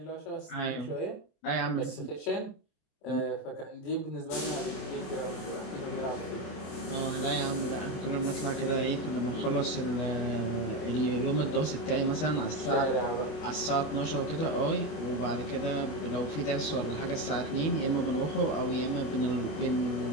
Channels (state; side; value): late; right; 27 ms